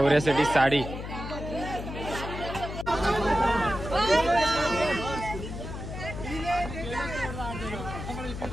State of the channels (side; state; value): left; noise; hum, 7 dB below the sound